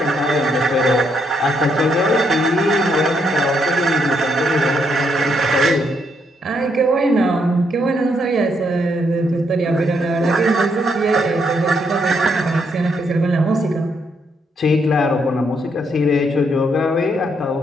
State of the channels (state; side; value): normal; both; correlation 0.75